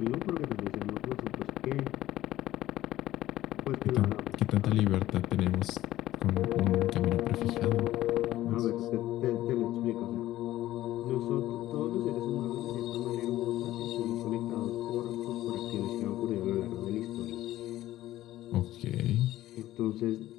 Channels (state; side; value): quieter; right; 14.8 dB